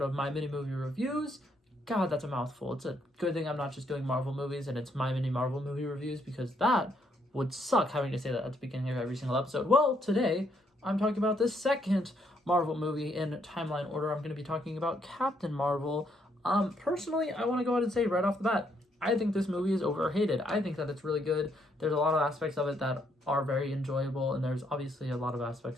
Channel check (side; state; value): both; normal; correlation 0.73